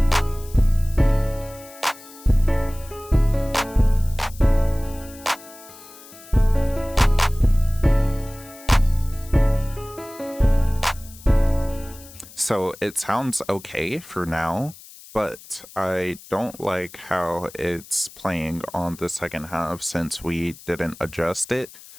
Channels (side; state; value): left; noise; hiss, 19 dB below the sound